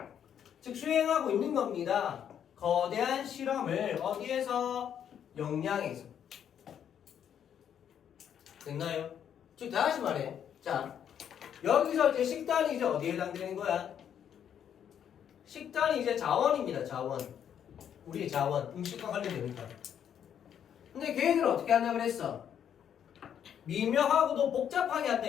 즉 수행하고 있는 겁니다. 거대한 실험을 어디에서? 역량에서. 됐나요? 즉 다시 말해. 자, 여기서 이제 식단이 이제 어디에 해당되는 거야? 식단이 이제 자원입니다. 자원. 우리의 자원. 음식과 관련되니까. 근데 걔네들은 어떻게 한다 그랬어? 미묘하고도 복잡하게 한다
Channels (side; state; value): right; quieter; 9.0 dB